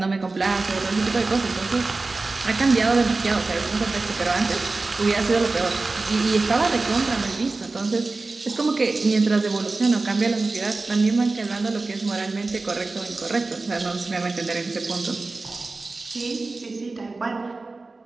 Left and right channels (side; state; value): left; quieter; 3.5 dB